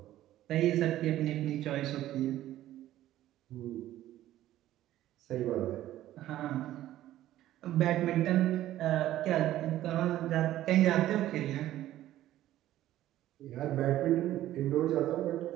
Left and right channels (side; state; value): left; quieter; 13.8 dB